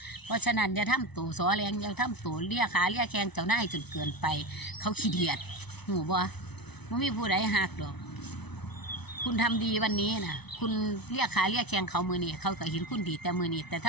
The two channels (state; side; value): late; right; 0.99 ms